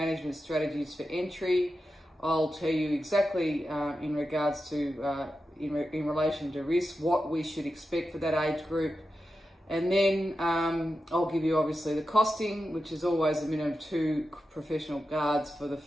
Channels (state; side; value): normal; both; correlation 0.90